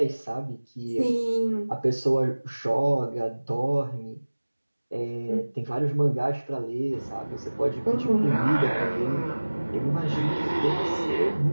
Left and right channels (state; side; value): inverted; both; correlation -1.00